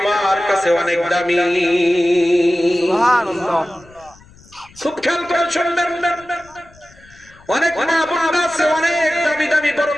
কাছে অনেক দামি। সুবহানাল্লাহ। খুব খেয়াল করে শুনবেন, অনেক মা বোনরা আছে অনেক দামি দামি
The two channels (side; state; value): left; noise; rumble, 26 dB below the sound